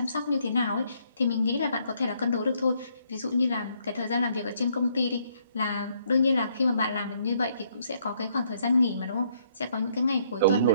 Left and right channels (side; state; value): both; inverted; correlation -0.69